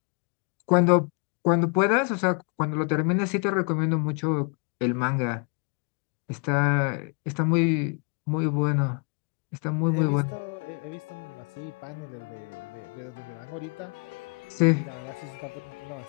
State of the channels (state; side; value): quieter; right; 36.9 dB